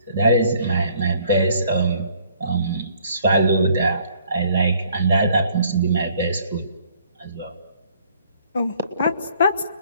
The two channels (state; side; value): inverted; both; correlation -0.62